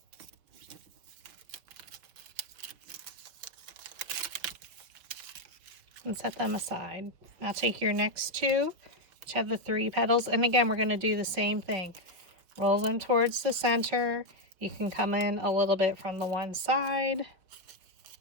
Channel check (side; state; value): left; late; 5.9 ms